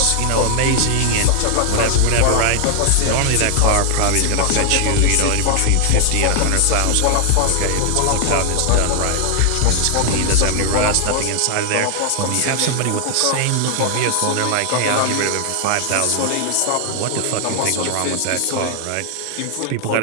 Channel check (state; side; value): different; both; correlation 0.00